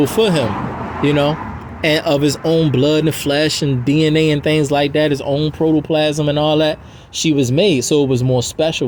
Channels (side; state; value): both; identical; correlation 1.00